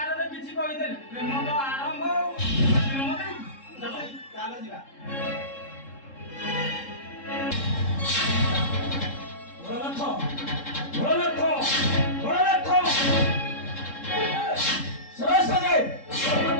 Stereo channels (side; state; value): right; late; 3.7 ms